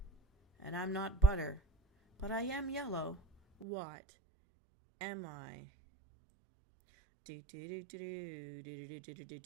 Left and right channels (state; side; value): drops out; left; at 3.7 s